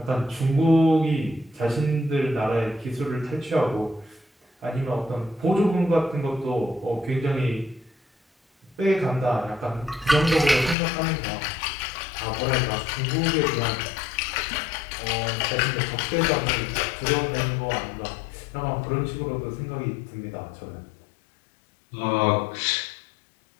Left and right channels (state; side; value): drops out; right; at 10.8 s